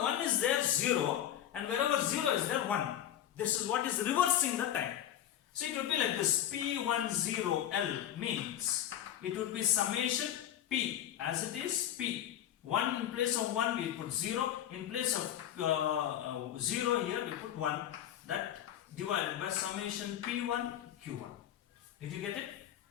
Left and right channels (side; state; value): right; quieter; 11.2 dB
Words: 1 is there 0 and wherever 0 is there 1. This is what is reversing the time. So it would be like this. P10L means it would be summation P as it is P. 1 in place of 1 we put 0. In place of 0 here we put 1. That divided by summation P1 Q1. Did you get it?